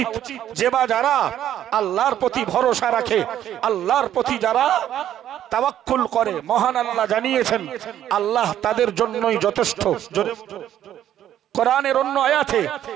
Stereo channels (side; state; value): left; quieter; 11.2 dB